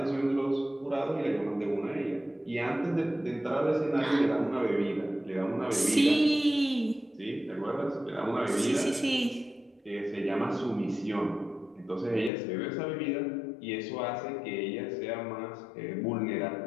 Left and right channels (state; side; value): drops out; right; at 12.3 s